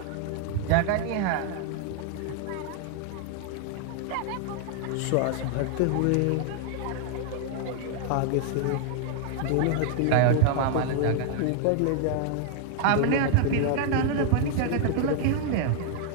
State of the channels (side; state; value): both; different; correlation 0.00